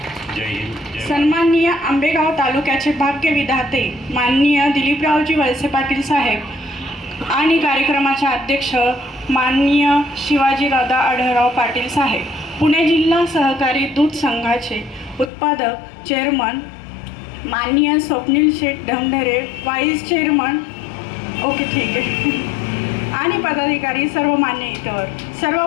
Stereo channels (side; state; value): right; drops out; at 15.3 s